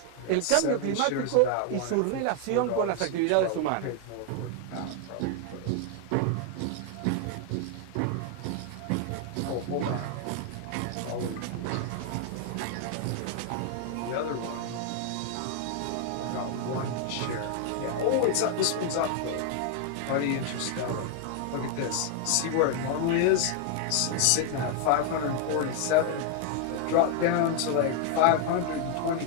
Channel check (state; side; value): different; both; correlation 0.00